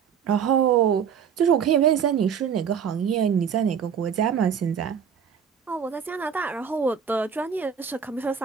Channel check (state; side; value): quieter; left; 7.5 dB